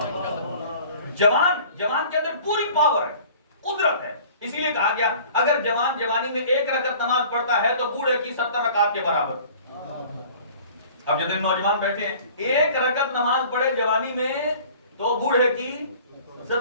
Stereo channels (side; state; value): both; inverted; correlation -0.48